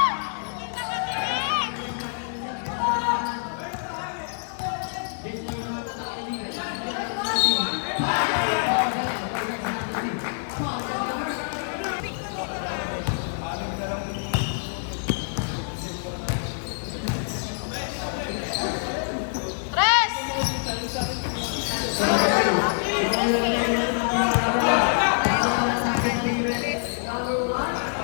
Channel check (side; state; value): right; silent; digital silence